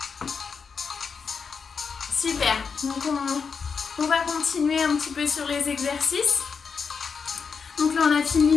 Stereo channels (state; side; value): quieter; right; 5.7 dB